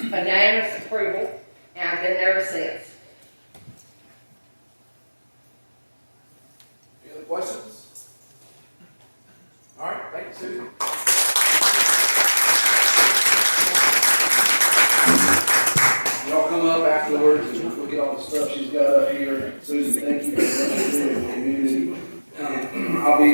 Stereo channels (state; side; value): inverted; both; correlation -1.00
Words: unanimous approval, and I've been there ever since. Any other questions? All right, thank you, Susan. Y'all come up afterwards and look at all the stuff she's got up here. Susan, thank you for what you're doing in the community. I'll